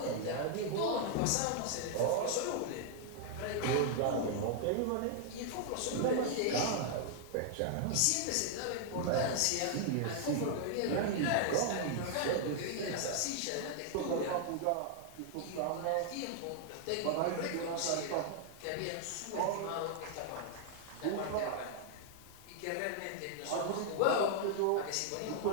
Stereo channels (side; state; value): both; different; correlation -0.01